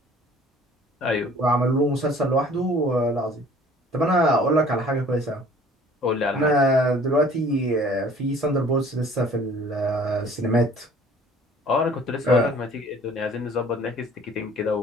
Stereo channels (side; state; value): both; normal; correlation 0.51